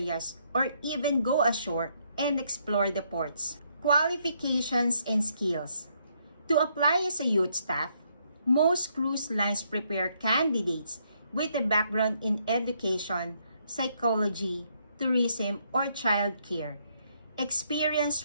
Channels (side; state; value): both; inverted; correlation -0.73